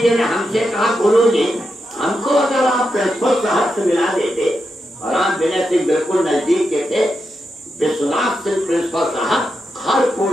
जी ने हमसे कहा, गुरु जी हमको अगर आप प्रिंसिपल साहब से मिला देते। और रामविनर सिंह बिल्कुल नजदीक के थे। विश्वनाथ सिंह प्रिंसिपल साहब हर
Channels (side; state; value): both; normal; correlation 0.86